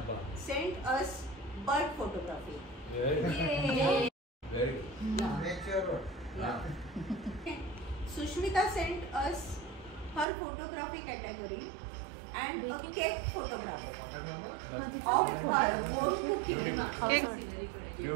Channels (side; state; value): left; drops out; at 10.2 s